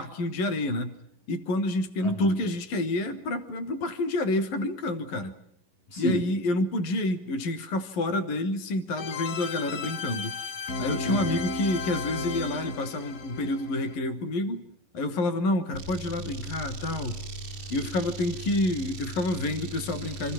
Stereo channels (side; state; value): right; late; 11 ms